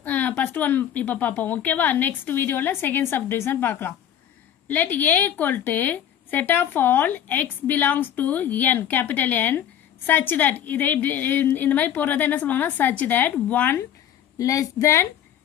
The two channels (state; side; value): quieter; right; 10.1 dB